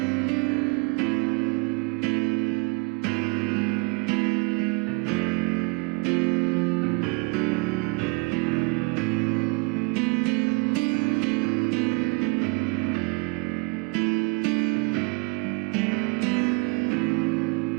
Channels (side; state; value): left; quieter; 29.3 dB